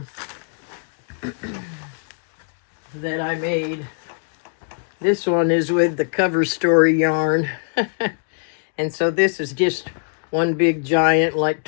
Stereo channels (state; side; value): silent; right; digital silence